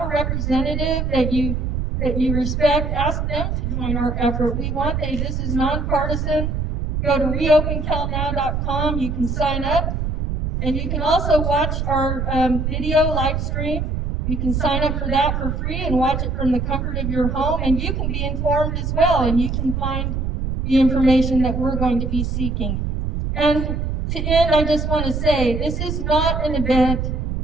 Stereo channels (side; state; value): right; noise; rumble, 1 dB below the sound